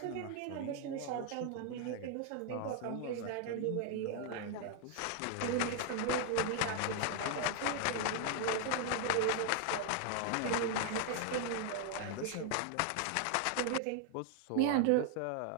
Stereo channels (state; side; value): different; both; correlation 0.00